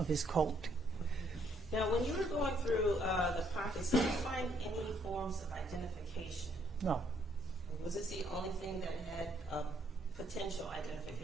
his coat. Now, when you were going through the pockets, did you find any forms of identification? No. Was this the only thing that had a potential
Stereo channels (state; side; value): normal; both; correlation 0.69